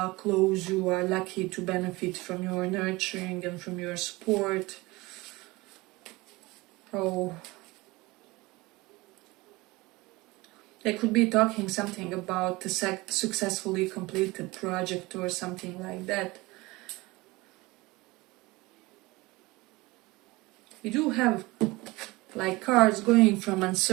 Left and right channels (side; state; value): left; quieter; 22.0 dB